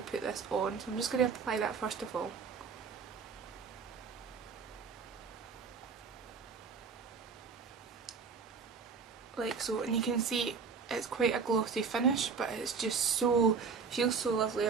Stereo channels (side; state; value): left; quieter; 5.5 dB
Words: put this on. So I'm just going to apply that first of all. Like so, and you can see it's quite a glossy finish, but it's just so, feels so lovely